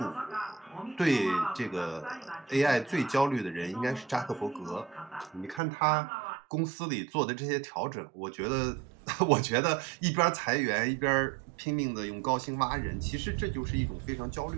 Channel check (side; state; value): left; drops out; at 5.6 s